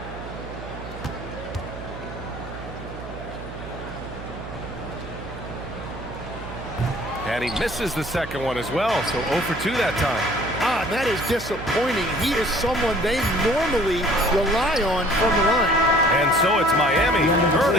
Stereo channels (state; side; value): noise; right; hum, 11 dB below the sound